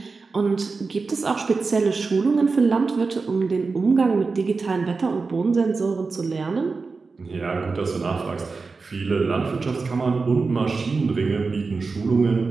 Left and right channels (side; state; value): left; quieter; 4.3 dB